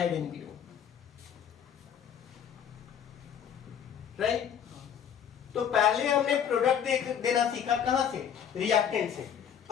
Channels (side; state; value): right; quieter; 8.5 dB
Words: NPO, right. तो पहले हमने प्रोडक्ट देना सीखा, कहां से, रिएक्टेंट से।